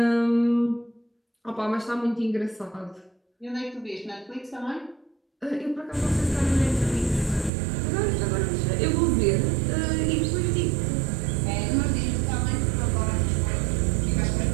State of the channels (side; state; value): left; drops out; at 7.5 s